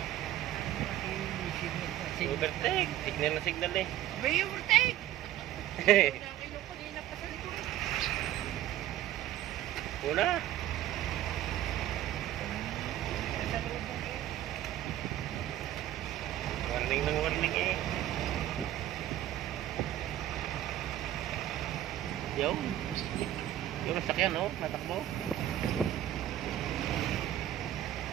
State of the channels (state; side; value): quieter; left; 12.8 dB